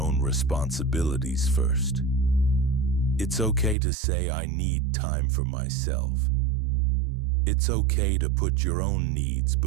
responsibilities first. It's okay to say, "I need time for myself." It's okay to put your own needs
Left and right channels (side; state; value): left; drops out; at 3.8 s